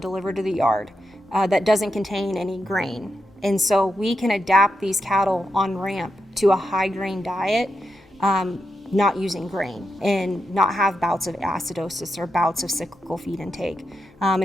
to the yard that doesn't contain any grain. And so we can adapt these cattle on Ramp to a high grain diet, not using grain, and not have bouts of acidosis or bouts of cyclical feed intake. And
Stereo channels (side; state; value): both; normal; correlation 0.86